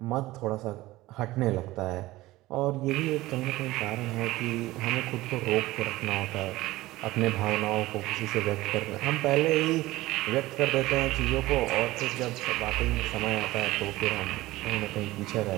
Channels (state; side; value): quieter; left; 18.0 dB